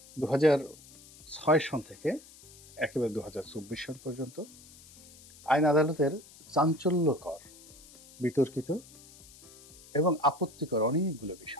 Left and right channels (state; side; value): noise; left; hiss, 21 dB below the sound